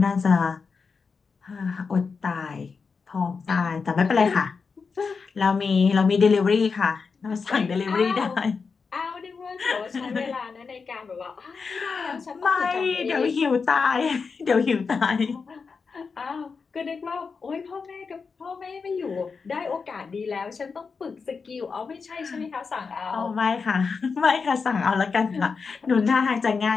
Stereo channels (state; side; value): quieter; right; 5.1 dB